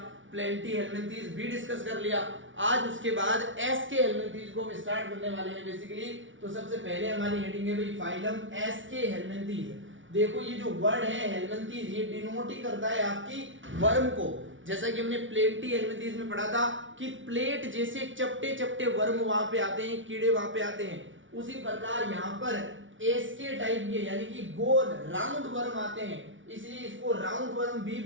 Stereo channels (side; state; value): left; late; 0.56 ms